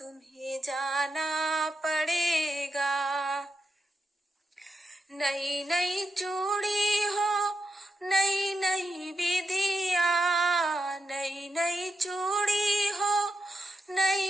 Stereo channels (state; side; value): normal; both; correlation 0.87